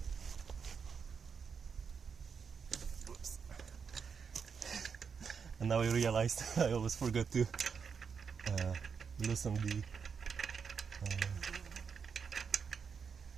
Oops. And now I realized I always forgot to loosen the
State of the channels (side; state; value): left; quieter; 6.2 dB